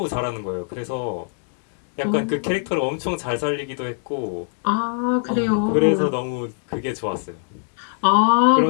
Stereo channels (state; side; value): silent; right; 64 dB below the other